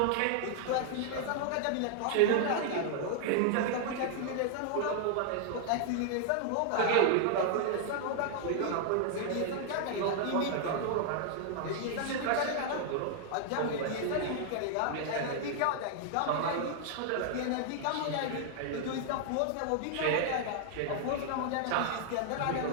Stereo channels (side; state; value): both; different; correlation -0.01